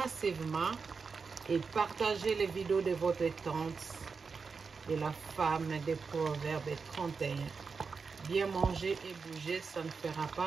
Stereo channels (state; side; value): quieter; left; 5.1 dB